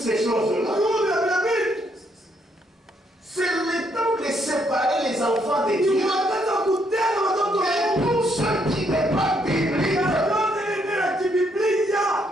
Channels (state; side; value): normal; both; correlation 0.73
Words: choses-là. C'est le temps de séparer les enfants de Dieu. Et tout ce qui n'est pas biblique.